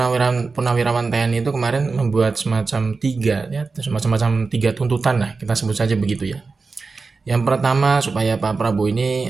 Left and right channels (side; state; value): left; quieter; 4.3 dB